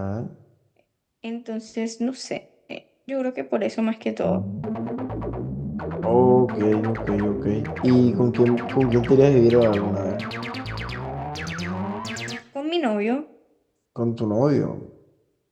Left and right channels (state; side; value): identical; both; correlation 1.00